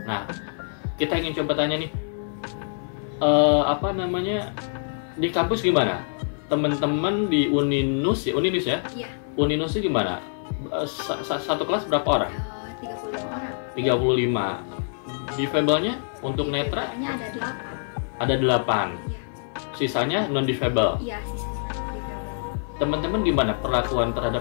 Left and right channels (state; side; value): silent; right; 62 dB below the other